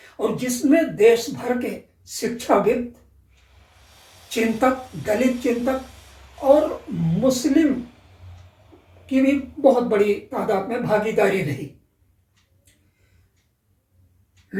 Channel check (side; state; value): both; identical; correlation 1.00